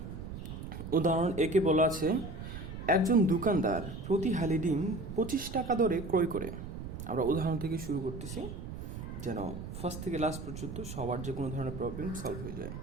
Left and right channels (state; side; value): noise; right; rumble, 8 dB below the sound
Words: উদাহরণ একে বলা আছে, একজন দোকানদার প্রতি হালি ডিম 25 টাকা দরে ক্রয় করে। আমরা উদাহরণ থেকে শুরু করতেছি যেন ফার্স্ট থেকে লাস্ট পর্যন্ত সবার যে কোনো ধরনের প্রবলেম সলভ হয়ে যায়।